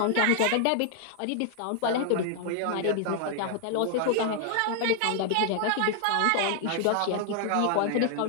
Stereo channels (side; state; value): both; different; correlation 0.00